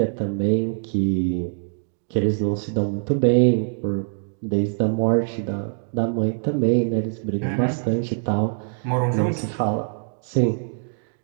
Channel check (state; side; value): silent; left; 63 dB below the other